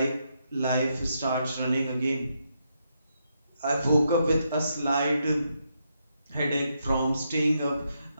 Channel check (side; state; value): both; inverted; correlation -0.80